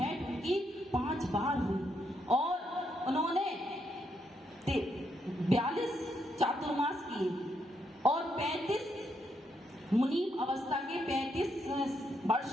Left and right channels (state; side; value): normal; both; correlation 0.78